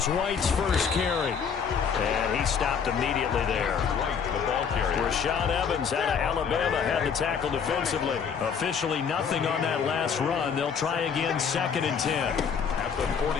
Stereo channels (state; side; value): quieter; right; 6.7 dB